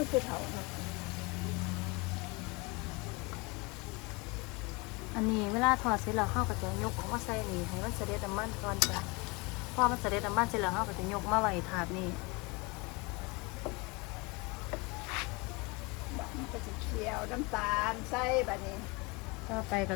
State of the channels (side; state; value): right; quieter; 27.2 dB